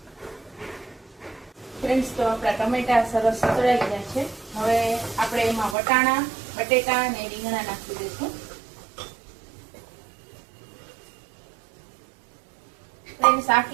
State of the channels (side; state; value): left; drops out; at 5.8 s